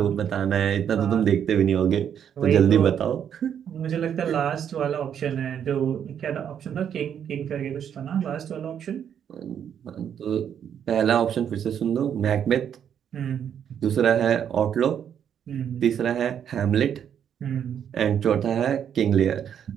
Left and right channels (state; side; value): quieter; left; 8.7 dB